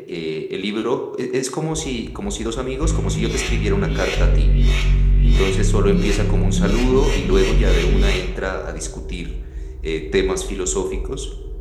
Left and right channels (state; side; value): identical; both; correlation 1.00